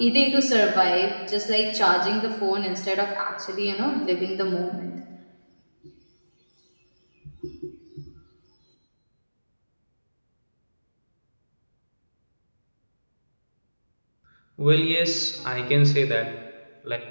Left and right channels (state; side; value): inverted; both; correlation -1.00